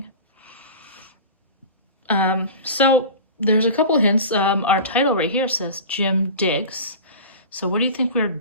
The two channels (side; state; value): both; inverted; correlation -0.34